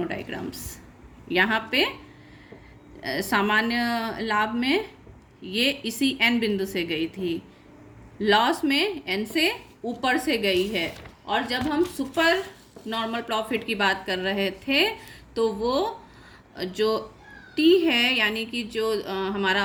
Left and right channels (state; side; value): identical; both; correlation 1.00